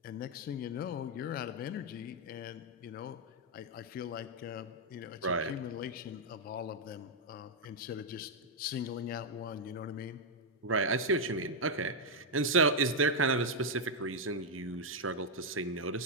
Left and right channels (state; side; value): normal; both; correlation -0.02